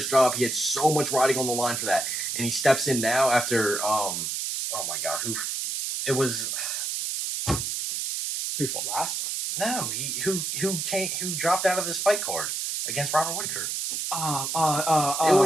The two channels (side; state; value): right; noise; hiss, 2 dB below the sound